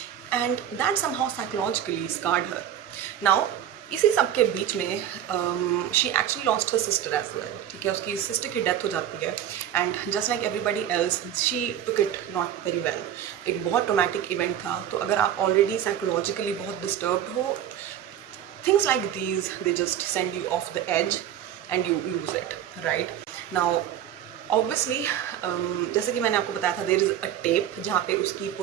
and that somehow psychologically scarred her. Now इसी सब के बीच में she actually lost her sister as well. ठीक है, उसकी सिस्टर की डेथ हो जाती है, and just like everybody else she took it not very well. एक बहुत ट्रोमैटिक इवेंट था, तो अगर आप ऑलरेडी साइकोलॉजिकली बहुत डिस्टर्ब्ड हो, things like these they just send you off the edge and you lose it, right. Now obviously जैसे कि मैंने आपको बताया था, देयर इज़ अ टेप जहाँ पे उसकी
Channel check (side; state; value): left; quieter; 10.6 dB